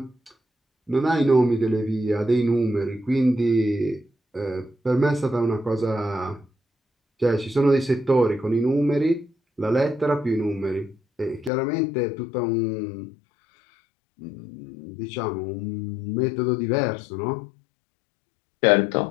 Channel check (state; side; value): drops out; right; at 11.5 s